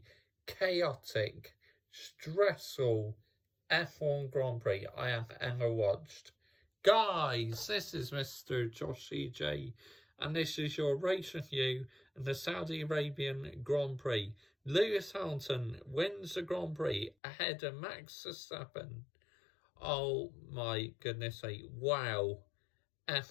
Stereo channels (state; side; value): drops out; right; at 17.2 s